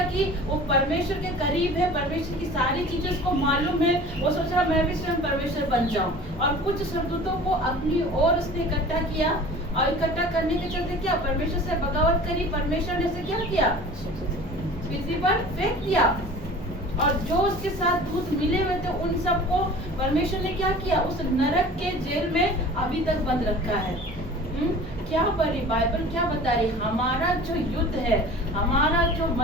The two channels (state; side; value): normal; both; correlation 0.42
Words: कि वो परमेश्वर के करीब है, परमेश्वर की सारी चीजें उसको मालूम है। वो सोच रहा मैं भी स्वयं परमेश्वर बन जाऊं। और कुछ स्वर्गदूतों को अपनी ओर उसने इकट्ठा किया और इकट्ठा करने के चलते क्या परमेश्वर से बगावत करी। परमेश्वर ने उसे क्या किया, पृथ्वी पर फेंक दिया। और जो उसके साथ दूत मिले हुए थे उन सबको परमेश्वर ने क्या किया, उस नरक के जेल में अभी तक बंद रखा है। क्या पढ़ी बाइबल क्या बता रही, हमारा जो युद्ध है, हमारा जो